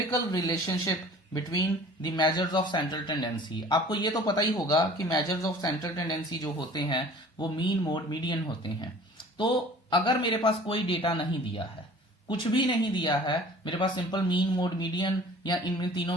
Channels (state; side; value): normal; both; correlation 0.47